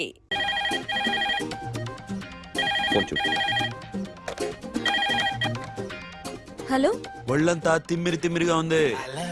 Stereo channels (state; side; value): identical; both; correlation 1.00